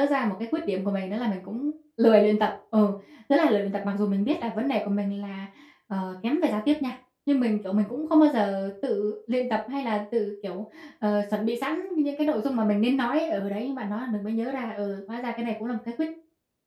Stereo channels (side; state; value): both; identical; correlation 1.00